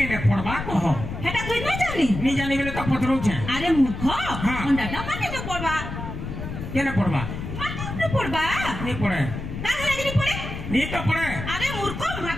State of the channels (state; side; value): noise; left; rumble, 7 dB below the sound